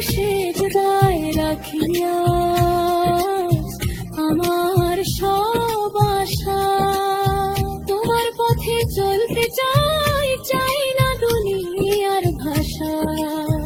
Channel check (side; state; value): both; identical; correlation 1.00